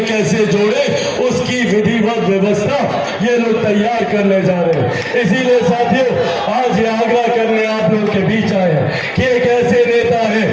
कैसे जोड़े उसकी विधिवत व्यवस्था ये लोग तैयार करने जा रहे हैं। इसीलिए साथियों, आज ये आग्रह करने आप लोग के बीच आए हैं कि एक ऐसे नेता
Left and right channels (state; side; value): identical; both; correlation 1.00